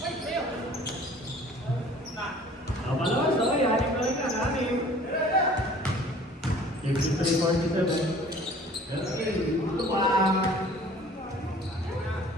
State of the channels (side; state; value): both; normal; correlation 0.50